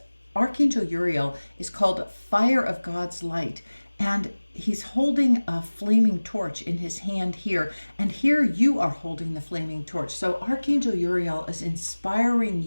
Archangel Uriel is called Fire of God's Light. And he's holding a flaming torch in his hand here. And here you are holding the flaming torch. So Archangel Uriel is inspiring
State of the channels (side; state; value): both; inverted; correlation -1.00